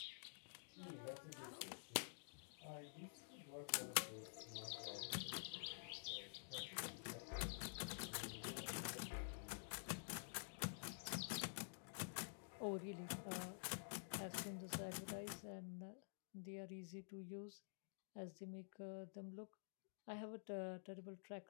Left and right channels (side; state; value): right; silent; digital silence